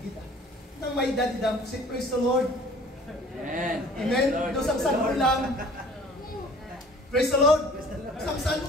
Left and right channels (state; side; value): normal; both; correlation 0.50